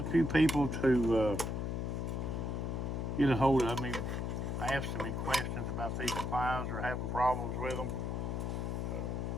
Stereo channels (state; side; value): noise; left; hum, 1 dB below the sound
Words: few people to get a hold of me, asking me questions about these supplies or having problems with them,